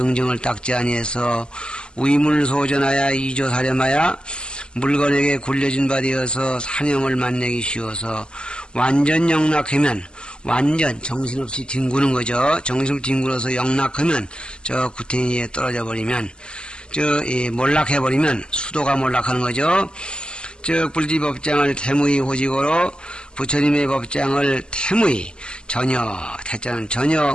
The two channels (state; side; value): late; right; 0.049 ms